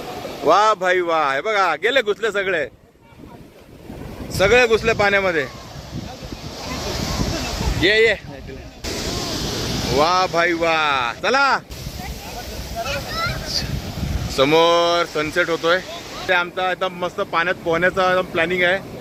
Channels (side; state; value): both; identical; correlation 1.00